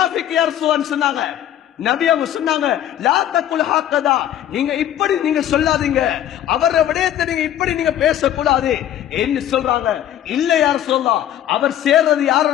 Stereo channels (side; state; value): right; quieter; 11.4 dB